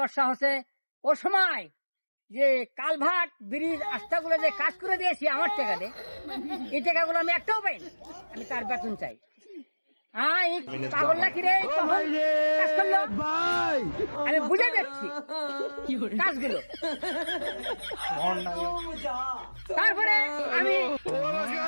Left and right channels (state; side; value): inverted; both; correlation -1.00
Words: হচ্ছে। ও সময় যে কালভার্ট ব্রিজ রাস্তাগুলো যে কাজ করে দিয়েছি আমার টাকা দিয়ে, এই টাকাগুলো আমি একটাও পাইনি। আমি তার বেতন চাই। পাগল নাকি রে? কাজ করলো, আমি বুঝে যাচ্ছি কাজগুলো। তারপরে আমি